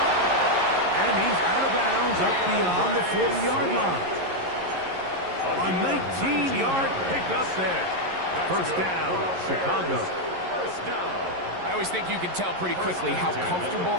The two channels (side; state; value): left; late; 11 ms